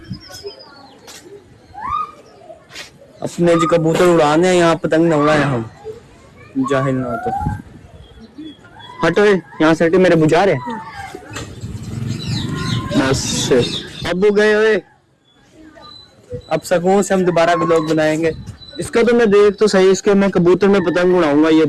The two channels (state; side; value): identical; both; correlation 1.00